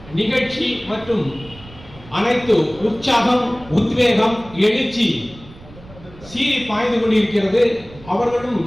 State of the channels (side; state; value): right; noise; rumble, 20 dB below the sound